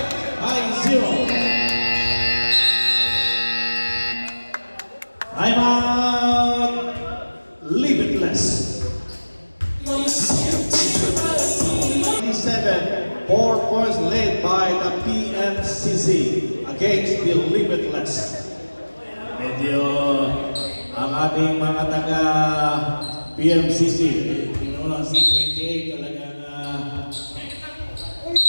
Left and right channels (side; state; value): both; inverted; correlation -1.00